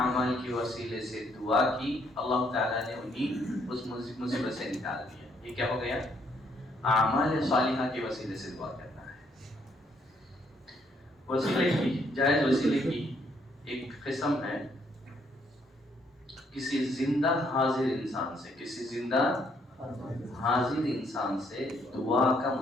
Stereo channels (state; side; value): normal; both; correlation 0.70